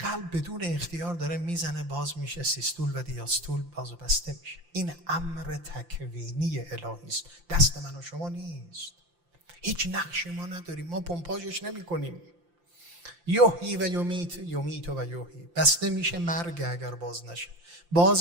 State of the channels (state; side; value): late; left; 5.8 ms